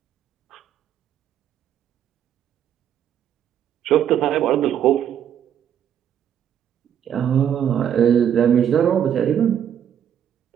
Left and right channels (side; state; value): left; quieter; 9.5 dB